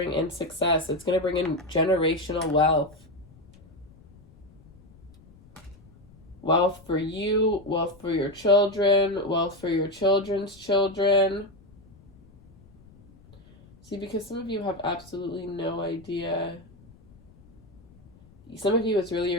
in success. It's going to bring in generational wealth. Wealth for you, wealth for your children, wealth for your children's children. See, because some of you have absolutely no idea. Some of you, it's really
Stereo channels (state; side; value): noise; left; rumble, 26 dB below the sound